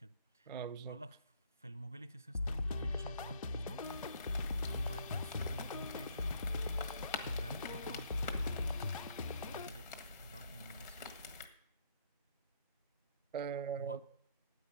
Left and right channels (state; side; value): inverted; both; correlation -0.66